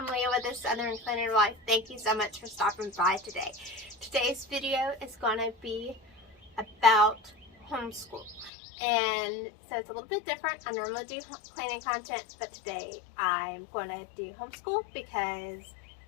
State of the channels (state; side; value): drops out; right; at 8.5 s